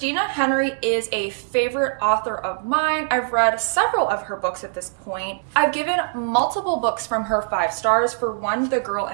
Henry is a favorite author of mine. I've read several of her books at this point. I've given multiple books from her 5 stars. For one, The Girl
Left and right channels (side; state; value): left; silent; digital silence